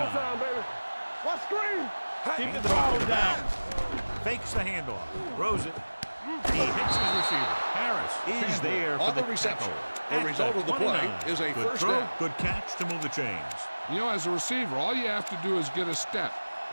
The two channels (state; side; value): inverted; both; correlation -1.00